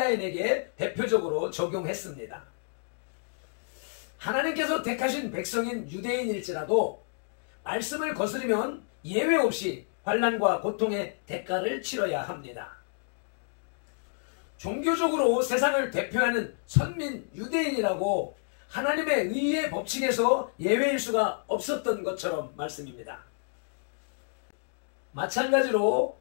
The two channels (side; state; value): right; silent; digital silence